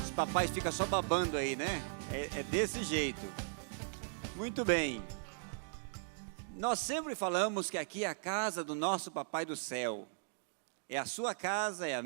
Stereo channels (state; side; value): silent; left; digital silence